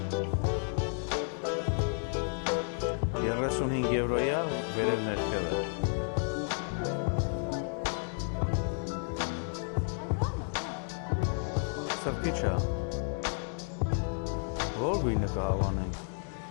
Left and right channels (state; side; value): silent; right; 56 dB below the other